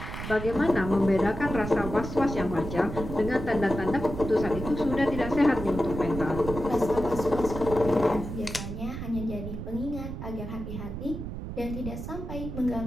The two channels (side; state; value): right; noise; rumble, 7 dB below the sound